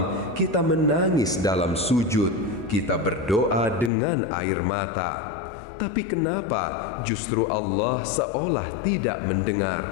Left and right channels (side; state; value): right; drops out; at 3.9 s